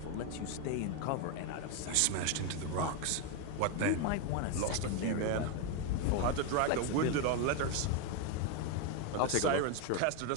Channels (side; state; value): both; different; correlation 0.01